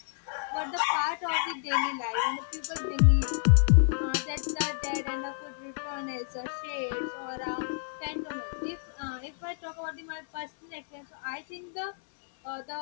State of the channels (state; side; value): silent; right; digital silence